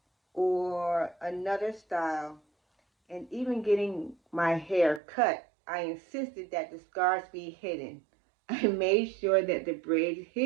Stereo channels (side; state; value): left; drops out; at 5.0 s